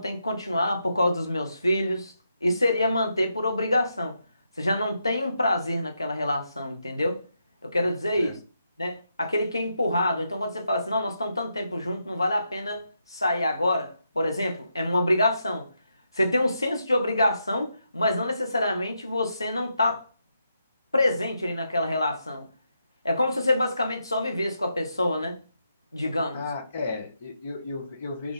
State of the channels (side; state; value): both; inverted; correlation -0.82